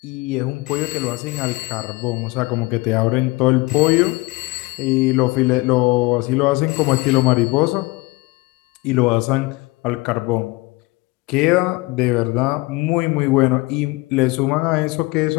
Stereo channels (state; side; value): quieter; right; 23.1 dB